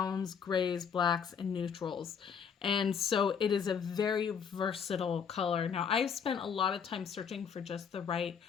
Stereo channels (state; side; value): quieter; right; 6.9 dB